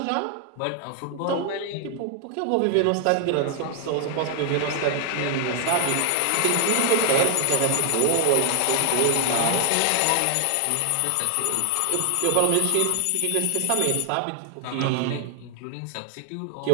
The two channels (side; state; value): both; different; correlation 0.00